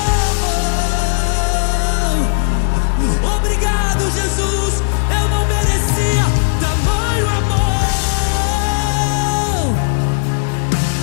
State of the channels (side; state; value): right; silent; 56 dB below the other